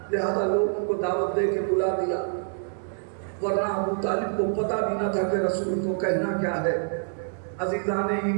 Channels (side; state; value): left; silent; digital silence